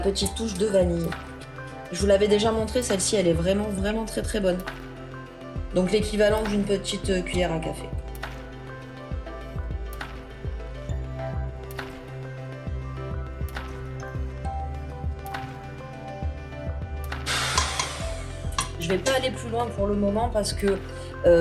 touche de vanille. Je vous l'avais déjà montré, celle-ci elle est vraiment très très bonne. Donc l'équivalent d'une petite cuillère à café. Je vais pas aller plus loin pour le moment parce que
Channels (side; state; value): both; identical; correlation 1.00